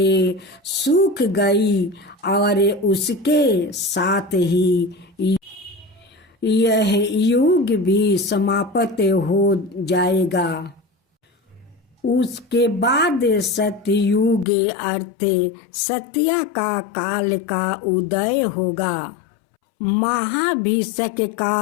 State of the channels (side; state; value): right; drops out; at 14.5 s